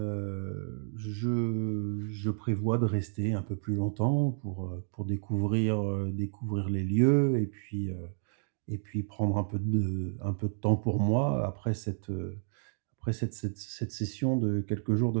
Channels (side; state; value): left; silent; digital silence